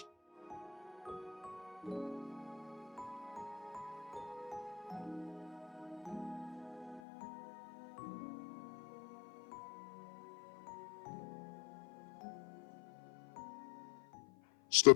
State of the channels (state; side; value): drops out; right; at 7.0 s